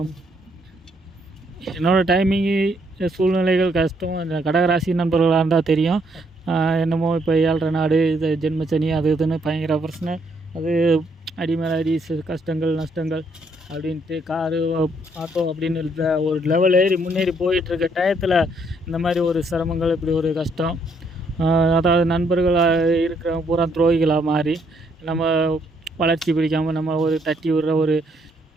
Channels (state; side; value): normal; both; correlation 0.71